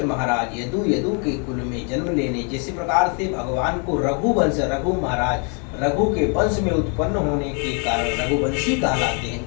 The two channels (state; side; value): quieter; right; 38.2 dB